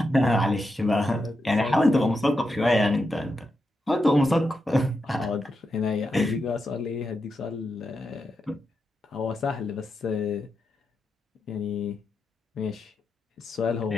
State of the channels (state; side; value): normal; both; correlation 0.86